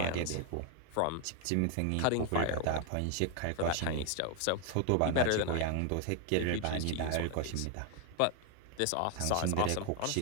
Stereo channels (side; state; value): both; different; correlation 0.00